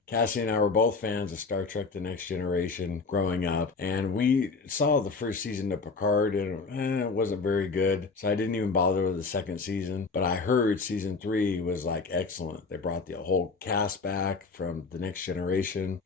Cassie and I were both fans of Star Trek The Next Generation growing up, and we saw the 1st season of Picard, and it wasn't very good, so I didn't even bother with the 2nd season. But I heard season 3 was excellent. They brought the whole cast back from The Next Generation,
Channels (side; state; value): right; quieter; 4.4 dB